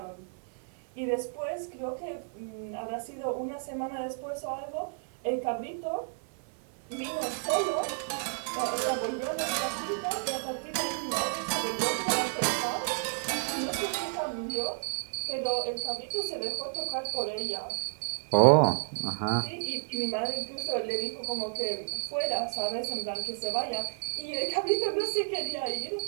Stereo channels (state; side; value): silent; left; 57 dB below the other